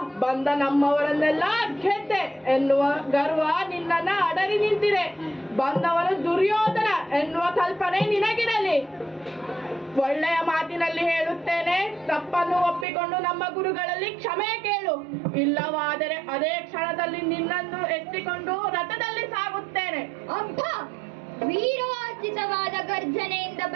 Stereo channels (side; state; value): left; drops out; at 12.9 s